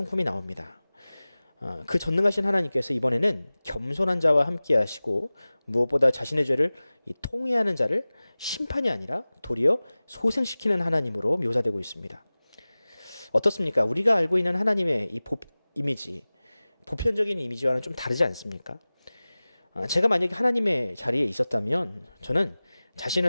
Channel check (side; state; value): both; inverted; correlation -0.98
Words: 나옵니다. 그 전능하신 하나님께서 이번에는 겸손한 자와 함께 하시고 무엇보다 자신의 죄를 통회하는 자를 심판이 아니라 도리어 소생시키는 하나님으로 묘사되고 있습니다. 어떻습니까? 우리가 알고 있는 하나님의 이 이미지, 보편적인 이미지와는 좀 다르지 않습니까? 제가 만약에 하나님의 자리에 있었다면 저는